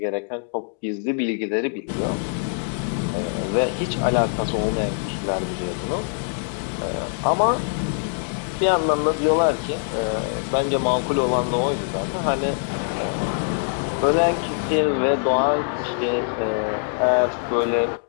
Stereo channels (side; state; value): right; silent; digital silence